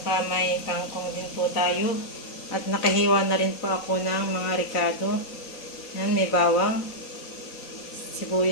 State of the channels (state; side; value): late; right; 3.9 ms